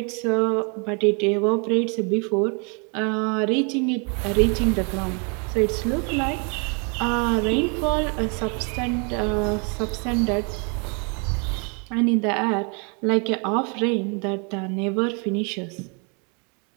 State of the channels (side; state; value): left; quieter; 35.8 dB